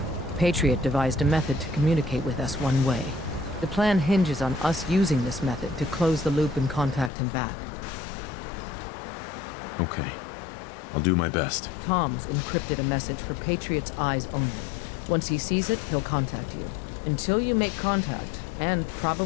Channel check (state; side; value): drops out; right; at 7.1 s